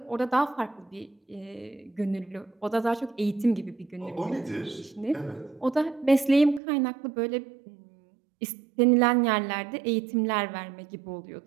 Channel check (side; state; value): left; drops out; at 6.6 s